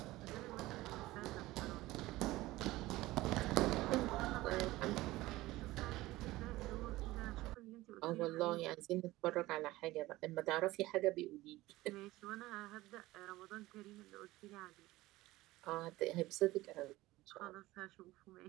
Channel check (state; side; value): quieter; left; 18.2 dB